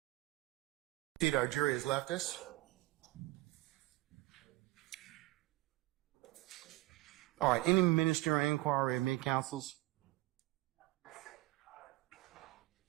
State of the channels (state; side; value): quieter; left; 19.6 dB